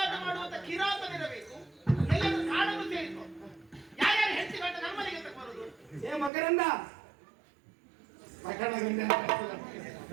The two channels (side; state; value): left; drops out; at 6.3 s